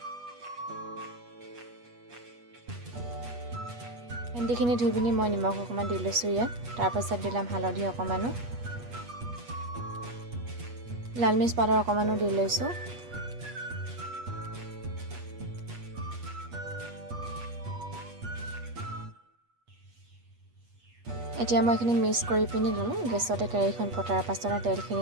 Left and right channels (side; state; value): left; late; 8.3 ms